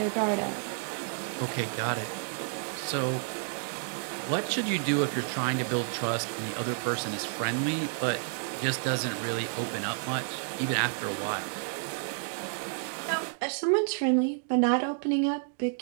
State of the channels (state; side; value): silent; left; digital silence